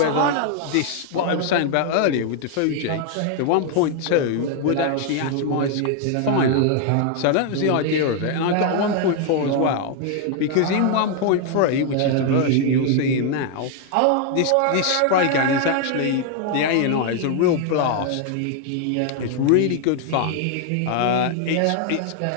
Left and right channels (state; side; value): different; both; correlation 0.00